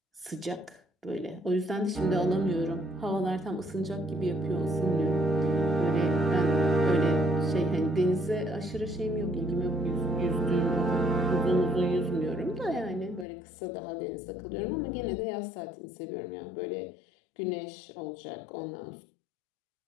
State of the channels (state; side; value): drops out; right; at 13.2 s